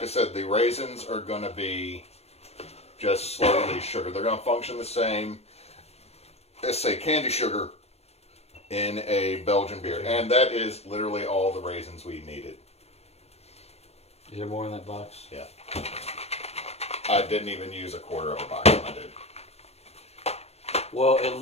I said, the raisins are going to be just slow-release sugar. They're going to function the same as, say, candy sugar in a Belgian beer. And that is literally all the raisins we needed. Is there more in that box? Yeah. I didn't even use a quarter of a box when I did. Well, at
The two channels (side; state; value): right; late; 0.31 ms